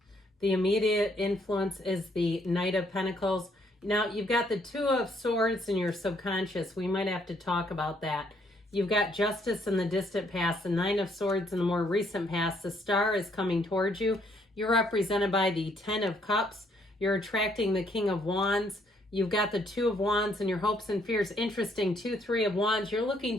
The immediate influence is the Knight of Pentacles. Now, you've got the Two of Swords in your subconscious. We might have to talk about that. You've got Justice in the distant past, the Nine of Swords in the more recent past. The Star is coming towards you. You're represented by the Ten of Cups. You're attracting the King of Wands. You've got the Two of Wands and your hopes and fears. Interesting, 2, 3 of Wands. You're looking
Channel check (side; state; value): both; normal; correlation 0.69